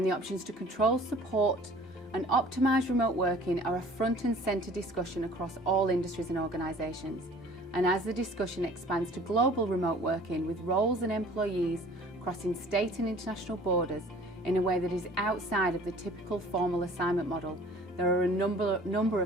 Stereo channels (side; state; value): both; normal; correlation 0.49